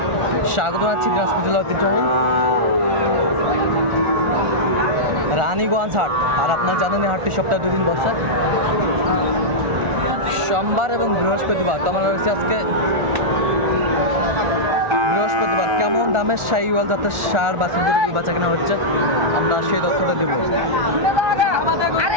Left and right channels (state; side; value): late; left; 1.4 ms